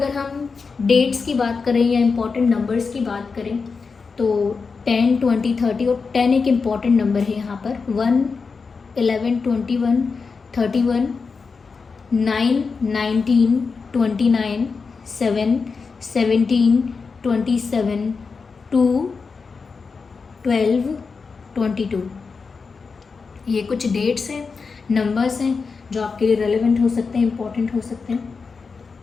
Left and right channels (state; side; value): quieter; right; 4.9 dB